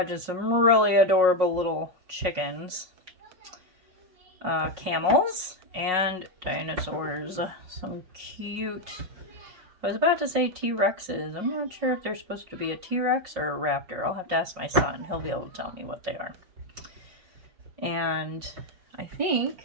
some really adorable little chickens. Camels. And dinosaurs. Some cute... I was about to say T-Rexes. I'm not sure if they're supposed to be a T-Rex or a raptor. I'll have to ask my son. He'll be able to tell me what they are. And I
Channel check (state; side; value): late; left; 5.4 ms